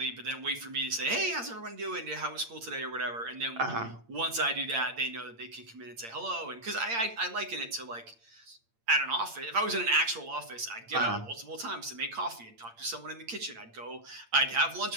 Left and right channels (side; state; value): left; late; 8.8 ms